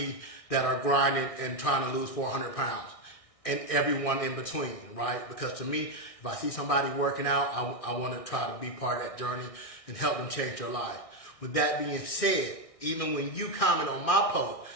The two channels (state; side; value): late; right; 1.6 ms